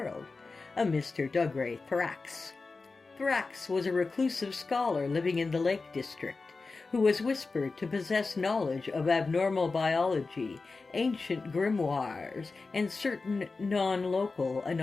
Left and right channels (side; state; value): right; quieter; 4.0 dB